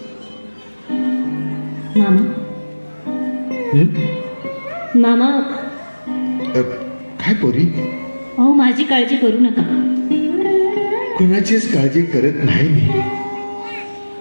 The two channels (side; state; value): both; inverted; correlation -1.00